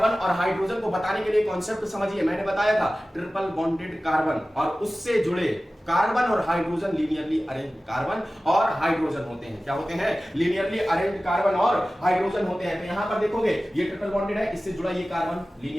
और हाइड्रोजन को बताने के लिए कॉन्सेप्ट समझिए, मैंने बताया था ट्रिपल बॉन्डेड कार्बन और उससे जुड़े कार्बन और हाइड्रोजन लिनियरली अरेंज कार्बन और हाइड्रोजन होते हैं। क्या होते हैं, लिनियरली अरेंज कार्बन और हाइड्रोजन होते हैं। तो यहां पर देखोगे ये ट्रिपल बॉन्डेड है, इससे जुड़ा ये कार्बन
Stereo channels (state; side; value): normal; both; correlation 0.96